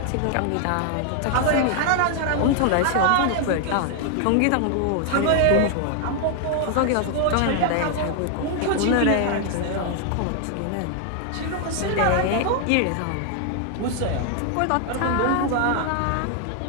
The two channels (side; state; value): both; different; correlation 0.00